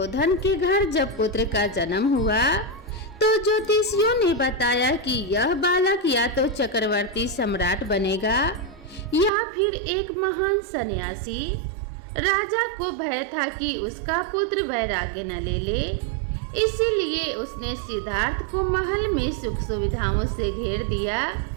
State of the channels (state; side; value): drops out; left; at 9.3 s